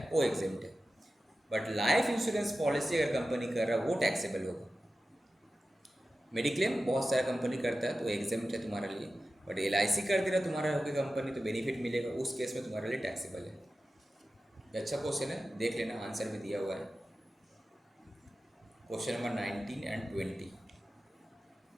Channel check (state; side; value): normal; both; correlation 0.94